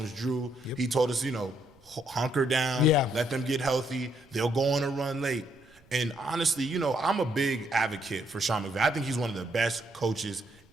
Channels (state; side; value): noise; right; rumble, 30 dB below the sound